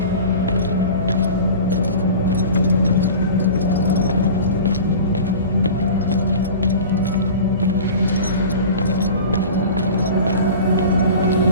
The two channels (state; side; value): inverted; both; correlation -0.37